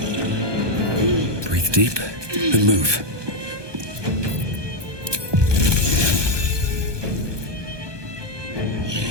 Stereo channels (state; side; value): late; left; 1.2 ms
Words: Breathe deep and move.